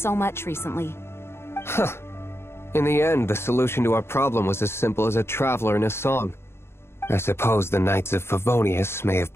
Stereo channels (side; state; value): right; late; 0.12 ms